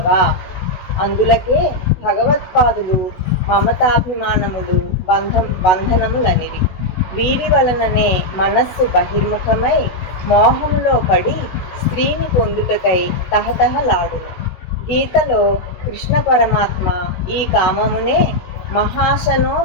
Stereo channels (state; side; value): late; right; 16 ms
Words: అందులకే భగవత్పాదులు మమతాభిమానములు బంధనములనిరి. వీరి వలననే మనస్సు బహిర్ముఖమై మోహములో పడి స్త్రీని పొందుటకై తహతహలాడును. గీతలో కృష్ణ పరమాత్మ ఈ కామమునే మహాశనో